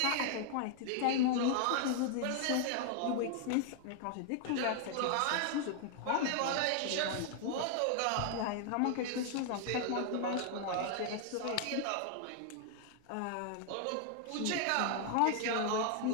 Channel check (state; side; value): different; both; correlation 0.00